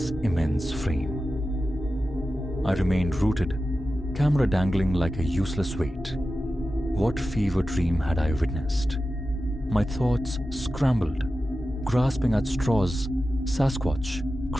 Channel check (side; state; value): both; normal; correlation 0.93